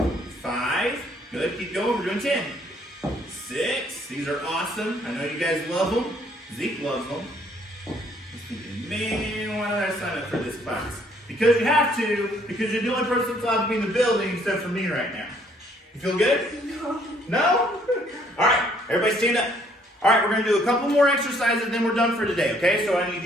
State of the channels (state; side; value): normal; both; correlation 0.64